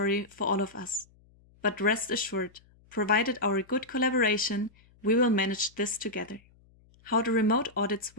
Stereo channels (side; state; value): left; noise; hum, 30 dB below the sound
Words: for all of us. But rest assured, provided our good collaboration, we will manage this together. How the remote audits